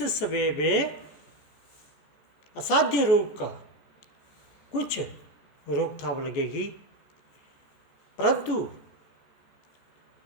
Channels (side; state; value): right; late; 14 ms